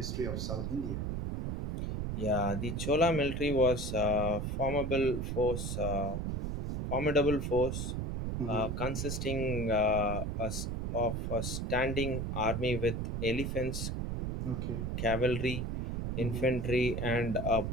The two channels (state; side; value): noise; right; rumble, 2 dB below the sound